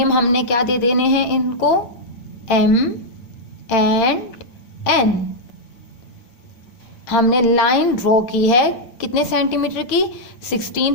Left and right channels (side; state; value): right; late; 8.8 ms